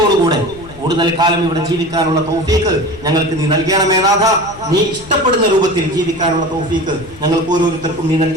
കൂടുതൽ കാലം ഇവിടെ ജീവിക്കാനുള്ള തൗഫീഖ് ഞങ്ങൾക്ക് നീ നൽകണമേ നാഥ. നീ ഇഷ്ടപ്പെടുന്ന രൂപത്തിൽ ജീവിക്കാനുള്ള തൗഫീഖ് ഞങ്ങൾക്ക് ഓരോരുത്തർക്കും നീ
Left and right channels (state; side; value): noise; left; rumble, 20 dB below the sound